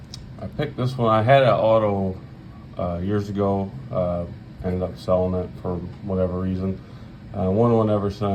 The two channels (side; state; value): both; identical; correlation 1.00